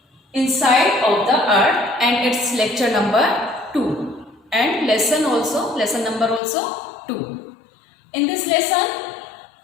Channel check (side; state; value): right; drops out; at 6.4 s